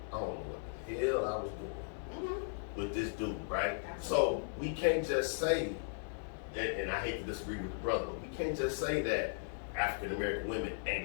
I don't know what the hell I was doing with this dude, right? So we can't just say, and I hate to disagree with the brother, but we can't just say that African American women ain't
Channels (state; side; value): silent; right; 53 dB below the other